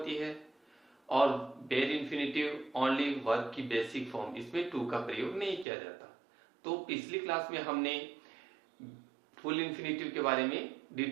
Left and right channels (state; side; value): drops out; left; at 5.7 s